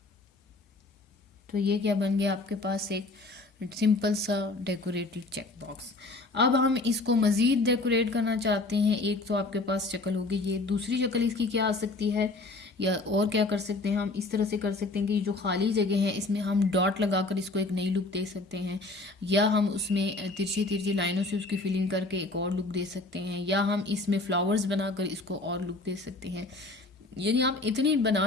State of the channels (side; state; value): right; quieter; 3.2 dB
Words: तो ये क्या बन गया आपके पास, एक सिंपल सा डेकोरेटेड चेक बॉक्स। अब हम इसको मज़ीद डेकोरेट करना चाहते हैं, एक तो आपके पास शक्ल होगी ये, दूसरी शक्ल इसकी क्या आ सकती है, या और क्या कर सकते हैं हम, इस तरह से कर सकते हैं कि जो खाली जगह है इसमें हम डॉट लगाकर इसको एक नई लुक दे सकते हैं, या हम उसमें तिरछी तिरछी लाइनों से उसकी फिलिंग करके एक और लुक दे सकते हैं, या हम इसमें फ्लावर्स बनाकर इसको और लुक दे सकते हैं। यानी आप इतनी